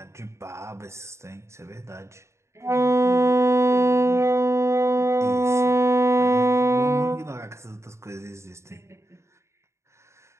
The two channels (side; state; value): left; late; 0.14 ms